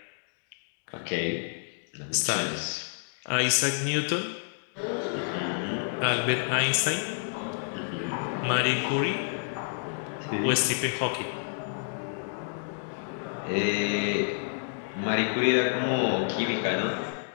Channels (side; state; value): right; silent; digital silence